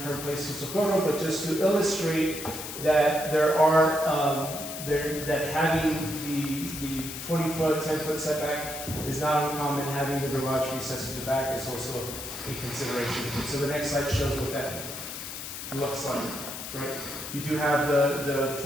current place to Socorro, but just to illustrate that that having the 20-foot, 10-foot setback is not uncommon. Having the garage recessed to the back is also a consideration. So the next slide shows what that looks like, right? You do have the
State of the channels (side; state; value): left; noise; hiss, 8 dB below the sound